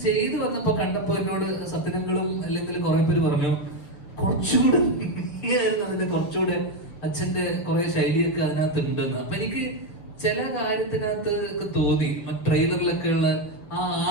ചെയ്തു വന്നപ്പോ കണ്ടപ്പോ എന്നോട് സത്യനങ്ങളും അല്ലെങ്കിൽ കുറെ പേര് പറഞ്ഞു കുറച്ചുകൂടെ ആയിരുന്നു അതിന്റെ കുറച്ചുകൂടെ അച്ഛന്റെ കുറെ ശൈലിയൊക്കെ അതിനകത്ത് ഉണ്ടെന്ന്. അപ്പൊ എനിക്ക് ചില കാര്യത്തിനകത്ത് ഒക്കെ തോന്നി. ട്രെയിലറിലൊക്കെ ഉള്ള ആ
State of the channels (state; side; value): late; right; 6.6 ms